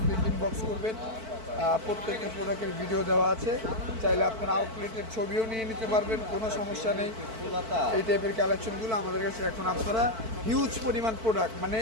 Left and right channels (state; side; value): late; left; 4.5 ms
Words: ইনবক্স করবেন, প্রত্যেকটা প্রোডাক্টের ভিডিও দেওয়া আছে, চাইলে আপনারা আউটলেটের ছবিও নিয়ে নিতে পারবেন, কোনো সমস্যা নেই। এই টাইপের কালেকশনগুলো আমাদের কাছে এখন আপনারা হিউজ পরিমাণ প্রোডাক্ট, মানে